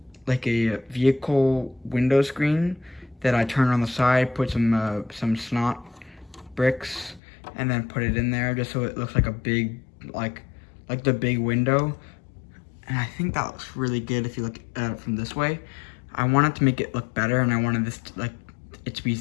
vehicle window screen that I turn on the side, put some snot bricks, and then put it in there just so it looks like a big, like the big window. And I think that looks really good if you look at it from this way. I wanted to make it look better, and I wanted this to, it to be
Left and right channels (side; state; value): right; drops out; at 7.2 s